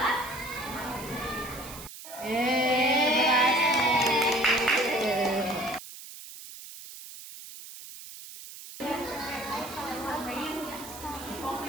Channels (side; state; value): right; noise; hiss, 14 dB below the sound